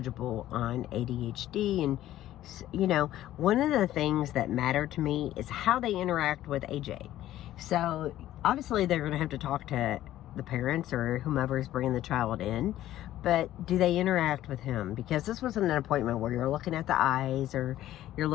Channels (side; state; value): right; quieter; 13.6 dB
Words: on ADHD. And, you know, one of the things that matter to me is how they interact with AJ. So, obviously, they're going to have to talk to the parents or whomever is bringing the child in. But do they interact with him? Because this wasn't an appointment where you're looking at the eyes or you're